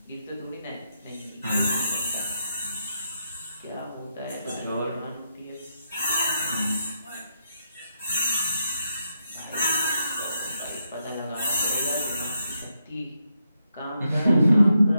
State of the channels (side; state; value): both; inverted; correlation -0.82